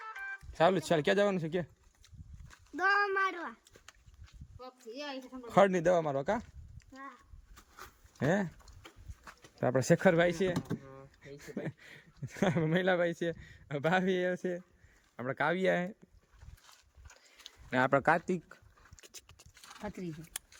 ચાલુ જ ચાલ ક્યાં જવાનું છે કે દવા મારવા ખડની દવા મારવા કા હે તો આપણે શેખરભાઈ છે મહિલાભાઈ છે ભાભી છે આપણે કાવ્યા હે ને આપણે કાર્તિક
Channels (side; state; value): both; identical; correlation 1.00